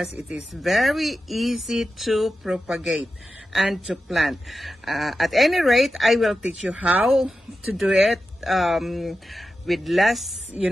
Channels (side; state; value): both; normal; correlation 0.91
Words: it is very easy to propagate and to plant. At any rate, I will teach you how to do it with less,